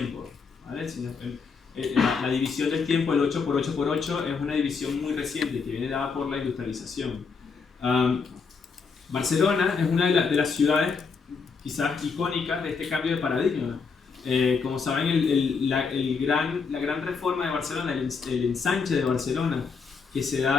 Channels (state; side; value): quieter; right; 5.2 dB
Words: ¿vale? La división del tiempo, el 8x8x8, es una división muy reciente que viene dada por la industrialización. Barcelona es una de las ciudades quizás icónicas de este cambio de paradigma. Como saben, la gran reforma de Barcelona, el ensanche de Barcelona, que se